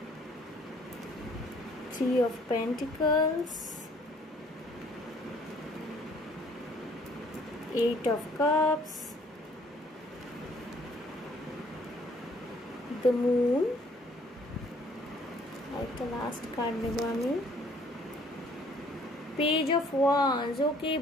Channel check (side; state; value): both; normal; correlation 0.60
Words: 3 of Pentacles, 8 of Cups, the Moon, একটা লাস্ট কার্ড নেব আমি, পেজ অফ ওয়ান্স। ওকে